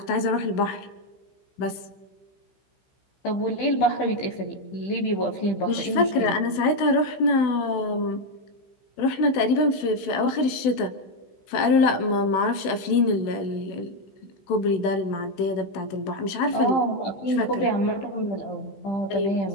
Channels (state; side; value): late; right; 16 ms